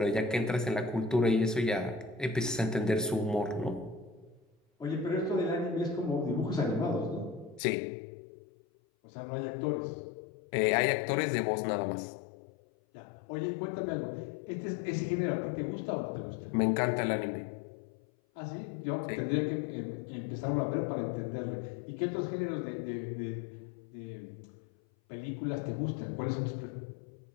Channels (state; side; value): drops out; right; at 7.6 s